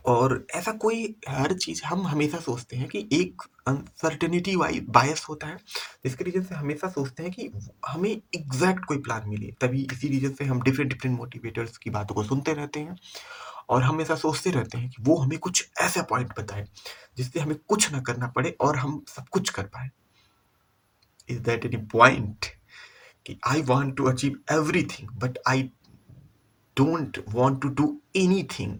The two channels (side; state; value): both; identical; correlation 1.00